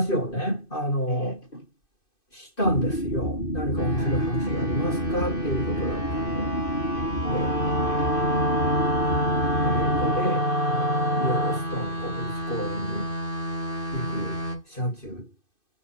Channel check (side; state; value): right; late; 2.6 ms